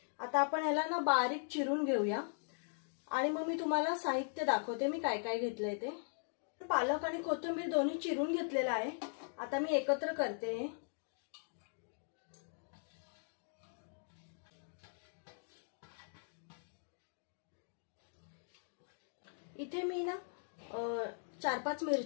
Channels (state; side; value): silent; right; digital silence